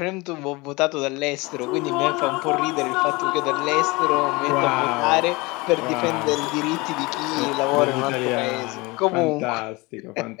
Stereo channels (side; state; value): right; quieter; 24.2 dB